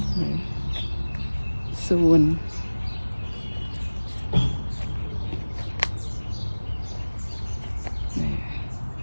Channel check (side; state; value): both; inverted; correlation -1.00